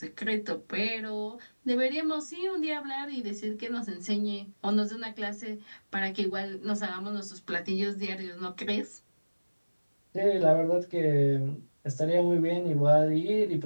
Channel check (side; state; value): both; inverted; correlation -1.00